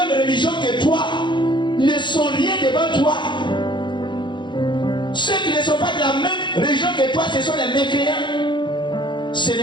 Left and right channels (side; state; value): right; late; 0.23 ms